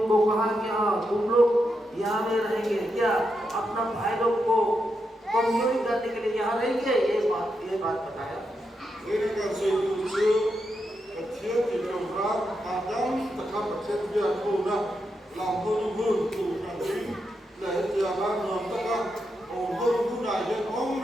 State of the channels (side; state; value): both; normal; correlation 0.84